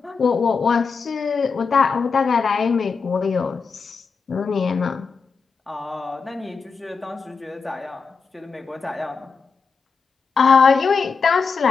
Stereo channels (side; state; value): right; quieter; 5.2 dB